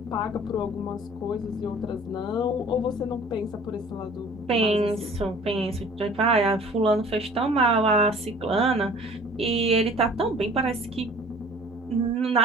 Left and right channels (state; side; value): normal; both; correlation 0.48